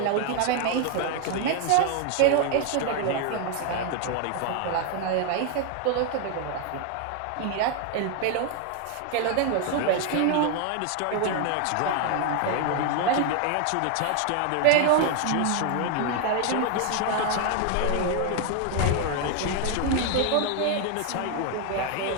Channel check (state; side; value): different; both; correlation 0.00